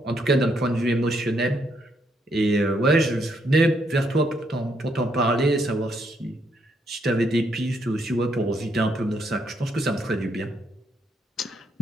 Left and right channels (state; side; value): normal; both; correlation 0.75